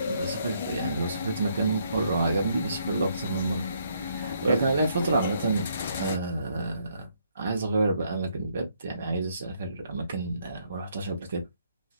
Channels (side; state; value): both; inverted; correlation -0.71